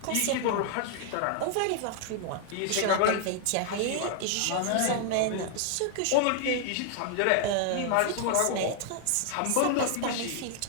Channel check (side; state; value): both; different; correlation 0.00